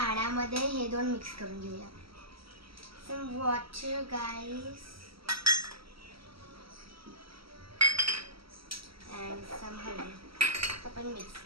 हे दोन मिक्स करून घेऊया. Some water, guys. And some हळद. आपण मिक्स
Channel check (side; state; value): left; late; 0.75 ms